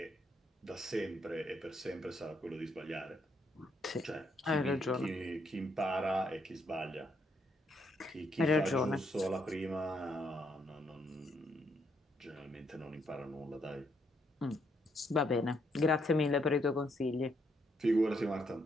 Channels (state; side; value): normal; both; correlation 0.74